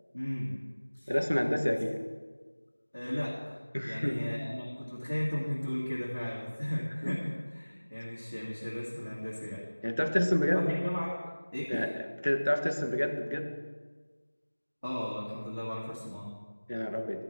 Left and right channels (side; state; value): both; inverted; correlation -1.00